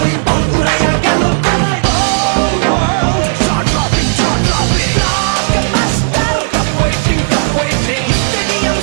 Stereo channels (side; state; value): left; silent; digital silence